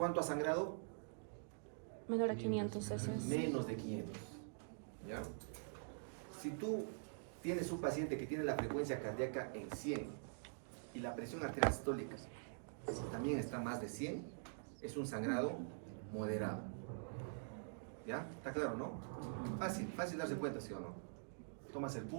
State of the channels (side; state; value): left; silent; digital silence